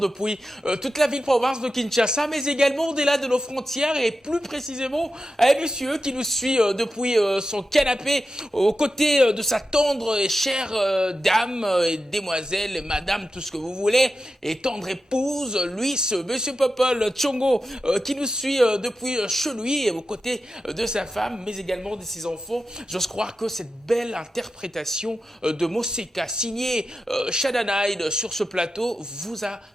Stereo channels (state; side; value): normal; both; correlation 0.90